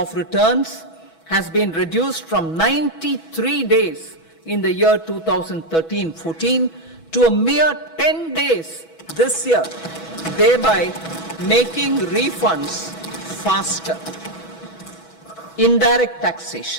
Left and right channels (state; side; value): late; right; 6.1 ms